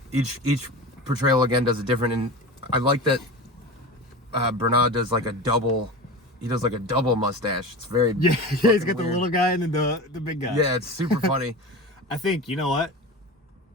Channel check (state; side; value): normal; both; correlation 0.30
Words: each portrayal again does it different. And I like that Branagh does like a double. He does like a double mustache. It's very he's got the weird. little guy and then the big guy. Yeah, it's super funny. I think, you know what?